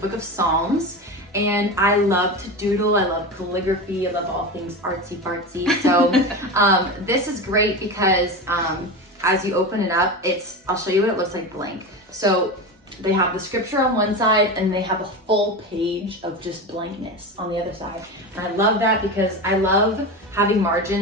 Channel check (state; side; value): normal; both; correlation 0.23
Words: of Psalms, and I love to doodle. I love calligraphy. I love all things artsy fartsy. So this is great because as you open it up, I'll show you what it looks like blank. So they have the scripture on one side and they have a full page of just blankness on the other side. And I love that because I love having